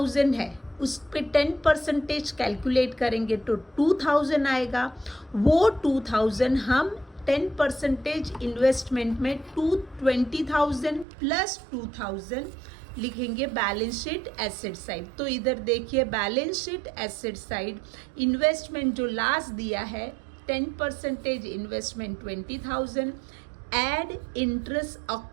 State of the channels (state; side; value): drops out; left; at 11.1 s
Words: है उस पे 10% कैलकुलेट करेंगे तो 2,000 आएगा। वो 2,000 हम 10% इन्वेस्टमेंट में 20,000 प्लस 2,000 लिखेंगे बैलेंस शीट एसेट साइड। तो इधर देखिए balance sheet asset side, investment जो लास्ट दिया है 10% investment 20,000, add interest